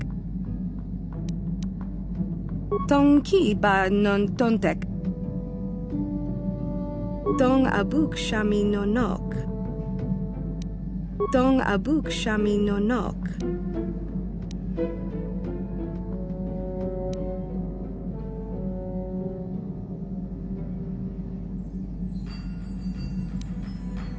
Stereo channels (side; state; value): both; identical; correlation 1.00